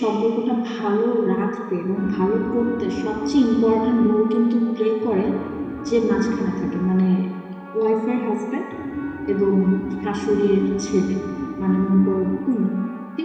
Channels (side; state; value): both; identical; correlation 1.00